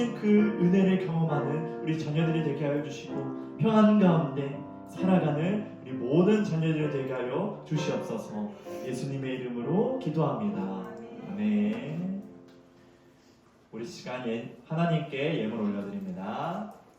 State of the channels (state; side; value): identical; both; correlation 1.00